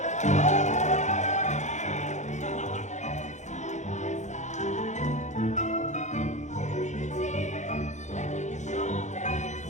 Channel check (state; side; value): late; right; 0.34 ms